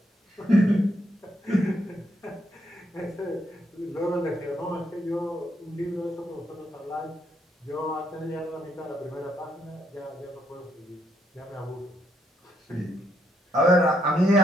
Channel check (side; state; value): both; normal; correlation 0.75